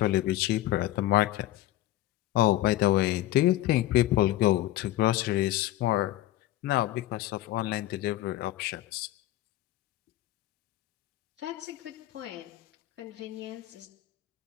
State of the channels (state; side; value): quieter; right; 14.9 dB